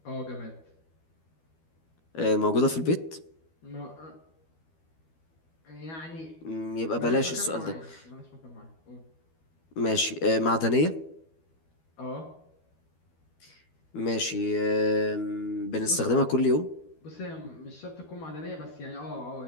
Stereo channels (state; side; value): late; right; 12 ms